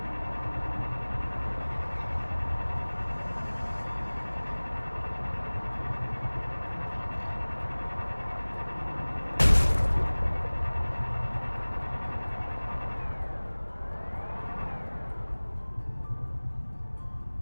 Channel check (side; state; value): both; inverted; correlation -1.00